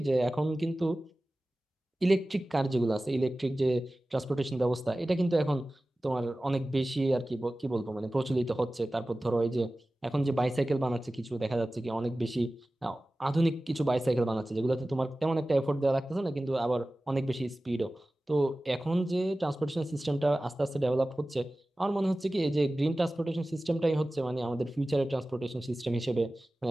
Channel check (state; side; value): normal; both; correlation 0.96